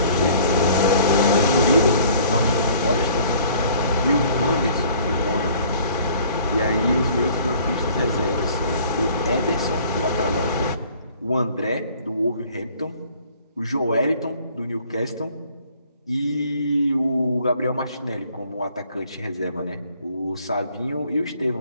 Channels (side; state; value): both; inverted; correlation -0.55